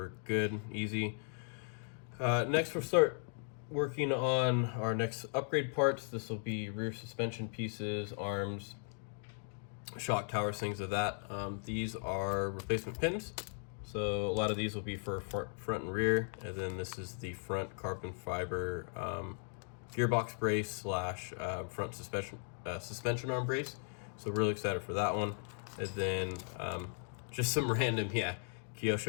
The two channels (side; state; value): right; silent; 53 dB below the other